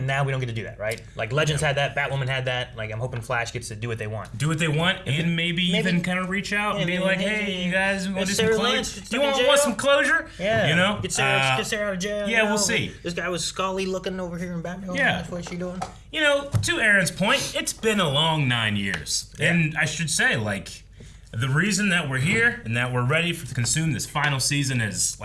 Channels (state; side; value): identical; both; correlation 1.00